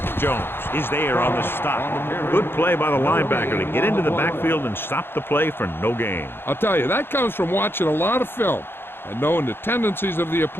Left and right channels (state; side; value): late; right; 0.11 ms